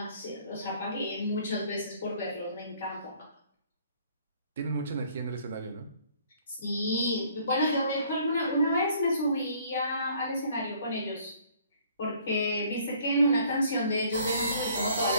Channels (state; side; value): inverted; both; correlation -0.59